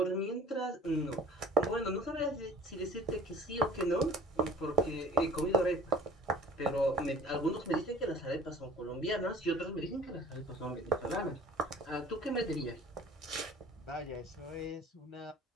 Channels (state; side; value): normal; both; correlation 0.47